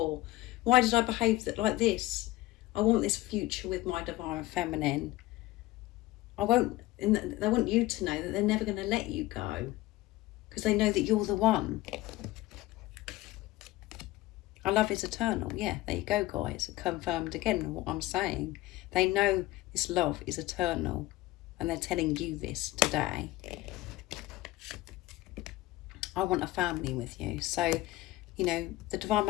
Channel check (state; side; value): quieter; right; 17.6 dB